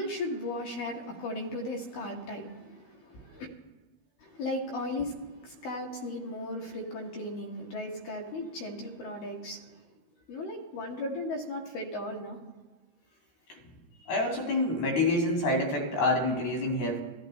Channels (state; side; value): late; right; 12 ms